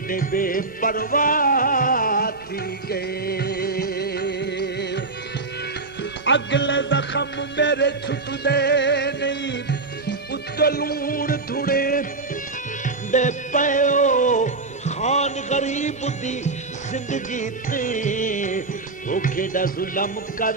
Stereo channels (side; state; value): left; quieter; 3.6 dB